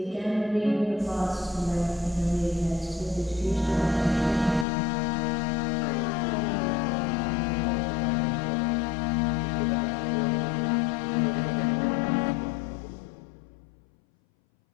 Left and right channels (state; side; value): drops out; right; at 4.7 s